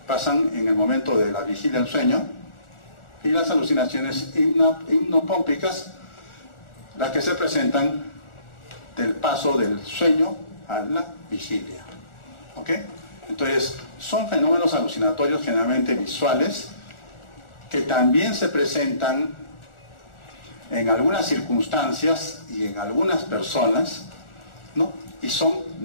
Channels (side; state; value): right; late; 1.4 ms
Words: en el momento de la vigilia al sueño, y las alucinaciones hipnopómpicas, las que se presentan del paso del sueño a la vigilia. ¿Ok? Entonces, son fenómenos alucinatorios generalmente visuales que también se presentan en algunas circunstancias y en algunas personas, ¿no? Y son